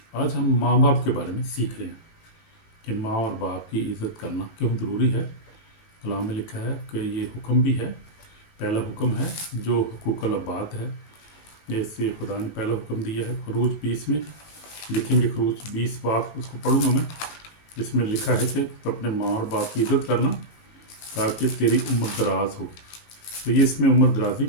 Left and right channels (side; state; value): right; late; 18 ms